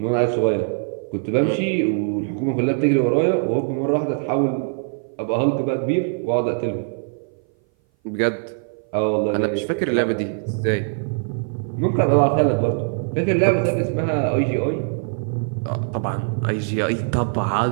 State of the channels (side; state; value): left; silent; 58 dB below the other